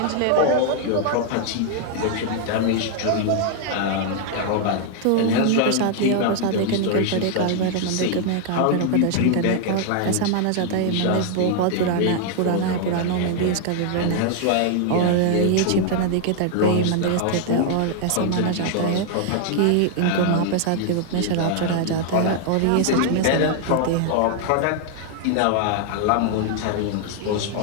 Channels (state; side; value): different; both; correlation 0.00